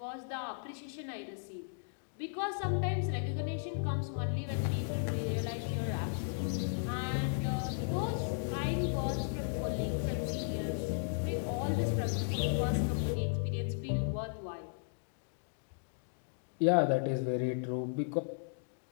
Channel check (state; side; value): silent; right; digital silence